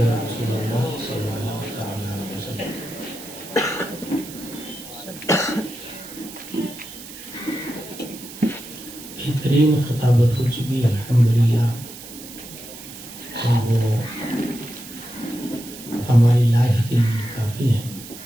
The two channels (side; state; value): right; noise; hiss, 14 dB below the sound